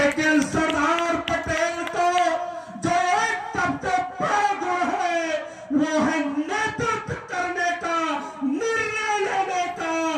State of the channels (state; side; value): identical; both; correlation 1.00